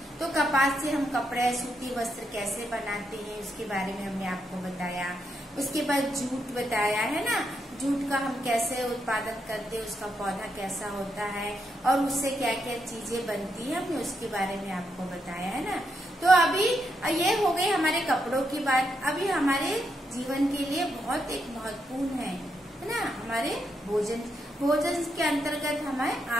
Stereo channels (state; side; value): normal; both; correlation 0.81